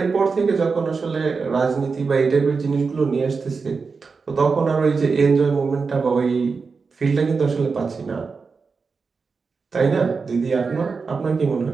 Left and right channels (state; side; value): quieter; left; 4.8 dB